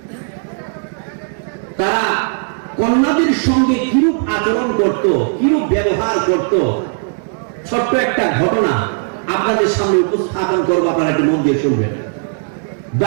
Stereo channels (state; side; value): silent; left; digital silence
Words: তারা কন্যাদের সঙ্গে কিরূপ আচরণ করত, কিরূপ ব্যবহার করত, ছোট্ট একটা ঘটনা আপনাদের সামনে উপস্থাপন করবো, আপনারা একটু মন দিয়ে শুনবেন।